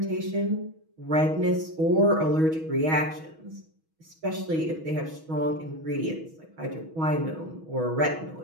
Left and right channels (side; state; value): left; late; 6.2 ms